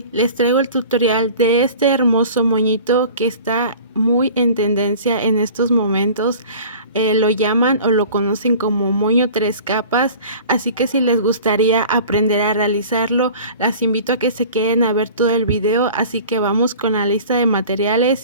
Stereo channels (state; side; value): inverted; both; correlation -0.43